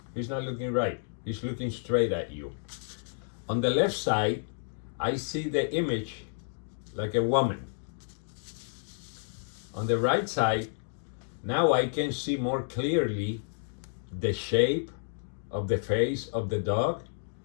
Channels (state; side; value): silent; right; digital silence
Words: he's not looking right. He's looking straight at you. On the left side, I see the image like a woman. On the right side, now I can see more clearly the shape of the face of the dog